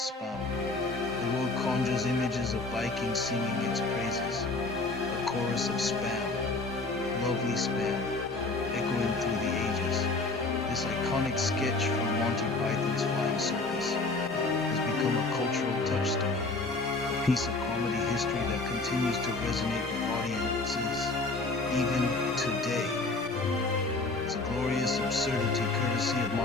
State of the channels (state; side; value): quieter; right; 3.4 dB